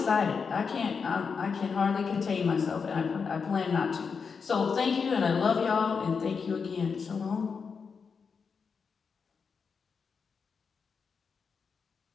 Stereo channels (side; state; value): right; quieter; 5.6 dB